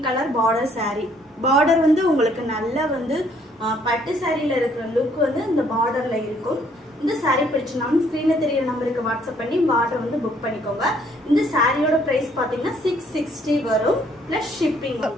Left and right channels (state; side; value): normal; both; correlation 0.64